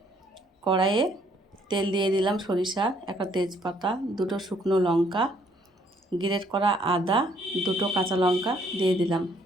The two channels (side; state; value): both; normal; correlation 0.65